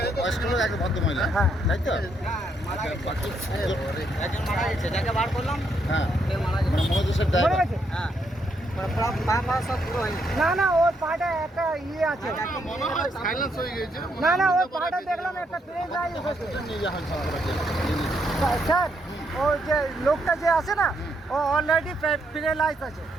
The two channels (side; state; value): both; normal; correlation 0.76